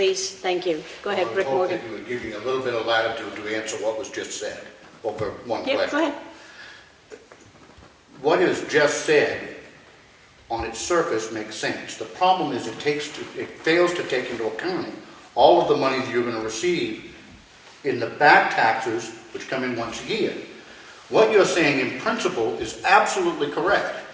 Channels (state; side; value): identical; both; correlation 1.00